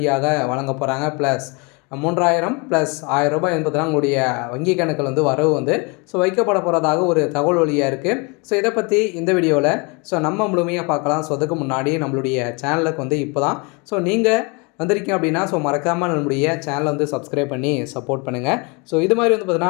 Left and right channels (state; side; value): quieter; right; 30.4 dB